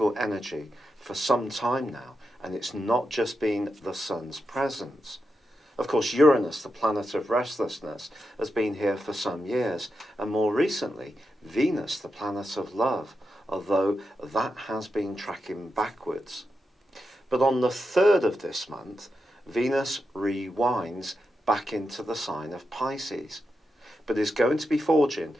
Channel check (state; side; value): normal; both; correlation 0.87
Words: energy for some time now, and it's not just been the Sun's presence. Of course, Uranus, the planet of restlessness, has been here for some years, and more recently, Venus, the planet of love, although that has been tracking backwards. But on the 3rd of this month, Venus rewinds back into the sign of Pisces, but is going to be forging